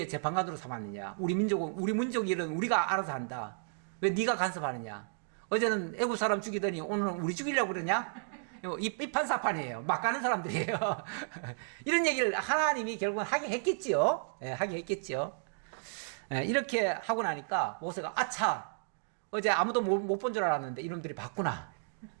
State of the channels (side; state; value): left; silent; digital silence